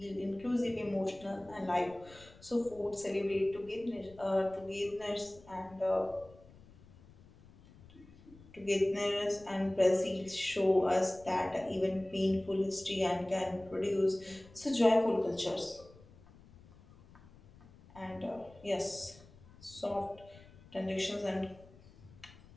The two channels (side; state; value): left; noise; rumble, 23 dB below the sound